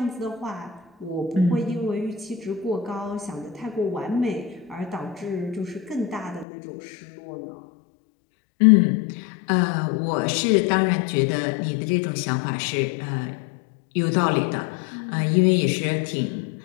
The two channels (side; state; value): right; drops out; at 6.5 s